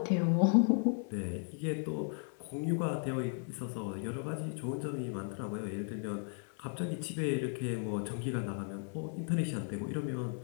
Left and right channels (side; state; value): right; silent; 54 dB below the other